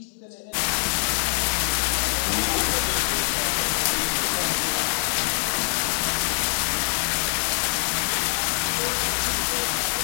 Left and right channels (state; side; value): silent; right; 62 dB below the other